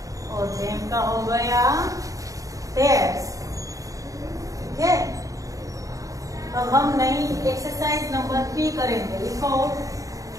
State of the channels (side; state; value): left; late; 0.16 ms